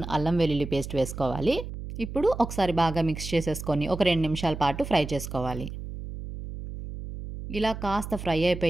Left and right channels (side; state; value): right; noise; hum, 9 dB below the sound